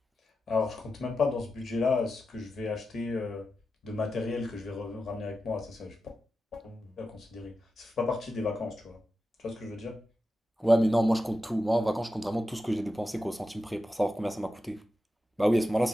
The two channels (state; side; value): normal; both; correlation 0.90